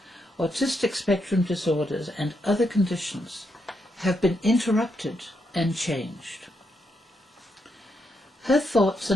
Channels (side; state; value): both; normal; correlation 0.80